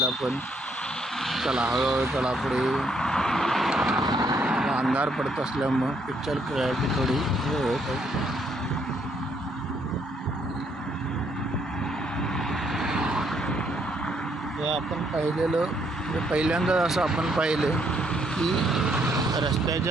पण. चला, हळूहळू चला पुढे. अंधार पडत असल्यामुळं पिक्चर क्लॅरिटी थोडी हे होत आहे. हे आपण पाहिलेलं, म्हणजे पहिल्यांदा असं आपण पाहिलं की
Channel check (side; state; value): both; normal; correlation 0.71